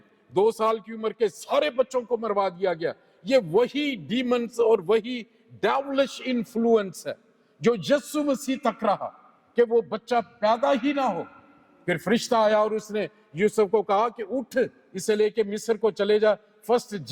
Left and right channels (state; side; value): identical; both; correlation 1.00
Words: 2 سال کی عمر کے سارے بچوں کو مروا دیا گیا۔ یہ وہی ڈیمنز اور وہی ڈیولش انفلوئنس ہے جو یسوع مسیح تک رہا کہ وہ بچہ پیدا ہی نہ ہو۔ پھر فرشتہ آیا اور اس نے یوسف کو کہا کہ اٹھ، اسے لے کے مصر کو چلے جا۔ First